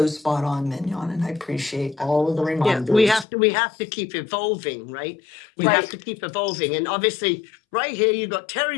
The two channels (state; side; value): drops out; right; at 3.2 s